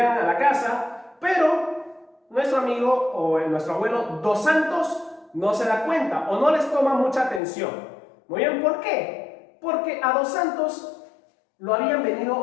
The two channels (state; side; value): drops out; right; at 7.4 s